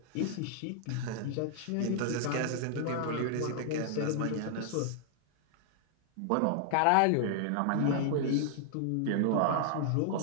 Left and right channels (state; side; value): different; both; correlation -0.01